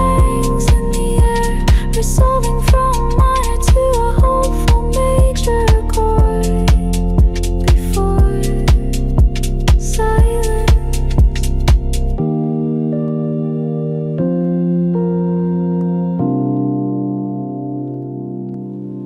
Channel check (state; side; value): identical; both; correlation 1.00